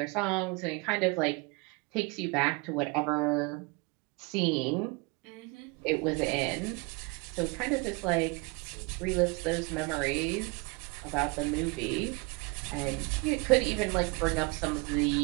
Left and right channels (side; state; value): left; quieter; 27.7 dB